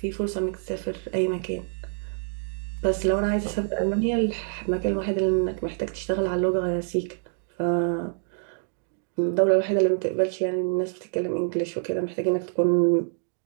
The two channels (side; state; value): left; silent; digital silence